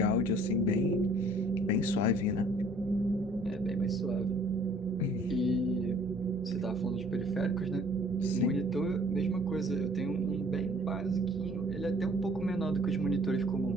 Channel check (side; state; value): both; normal; correlation 0.56